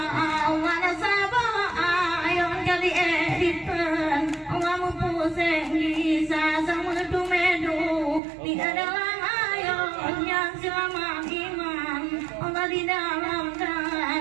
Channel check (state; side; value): drops out; left; at 8.2 s